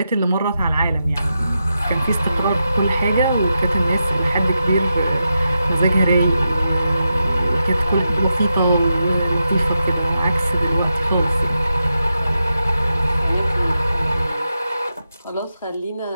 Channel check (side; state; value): both; inverted; correlation -0.88